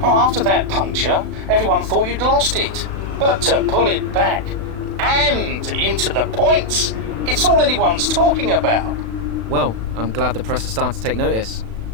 Oh, after that puncture, everyone thought you'd lost it. But to pull it back and into the points, it's all anyone's talking about. Well, I'm glad the press has started to take notice.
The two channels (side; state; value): left; late; 36 ms